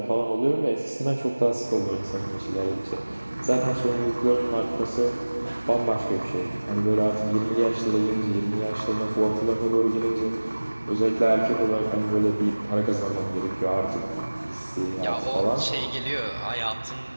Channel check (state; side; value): inverted; both; correlation -1.00